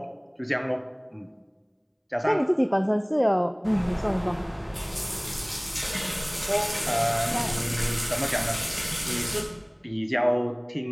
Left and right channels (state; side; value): identical; both; correlation 1.00